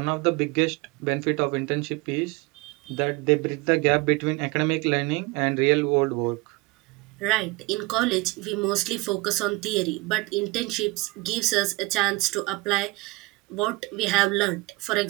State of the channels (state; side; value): quieter; left; 23.6 dB